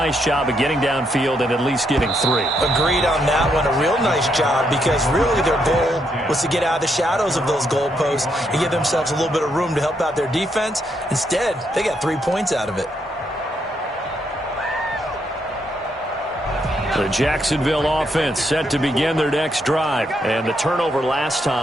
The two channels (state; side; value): normal; both; correlation 0.77